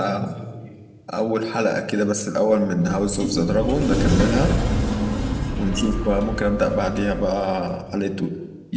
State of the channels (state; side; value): identical; both; correlation 1.00